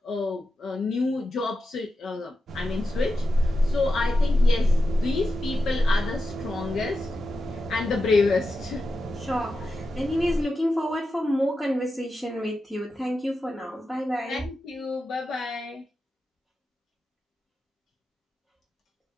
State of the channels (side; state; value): both; normal; correlation 0.90